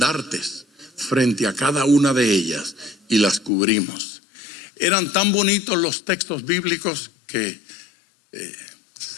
frente a cada una de ellas y las cubrimos. Eran tan bonitos los textos bíblicos que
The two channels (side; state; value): right; drops out; at 3.5 s